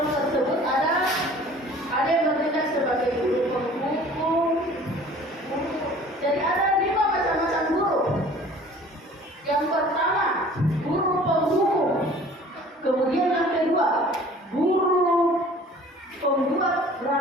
tersebut ada yang bertindak sebagai guru penghukum. Jadi ada 5 macam-macam guru. Yang pertama, guru penghukum. Kemudian yang kedua, guru pembuat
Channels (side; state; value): both; normal; correlation 0.49